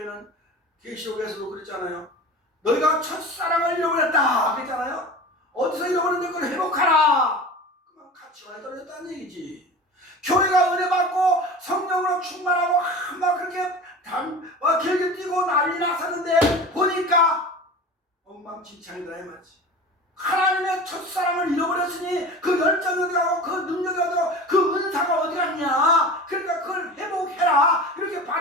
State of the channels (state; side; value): normal; both; correlation 0.34